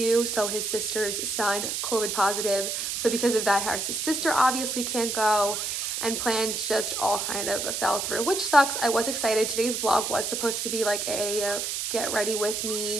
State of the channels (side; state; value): right; noise; hiss, 2 dB below the sound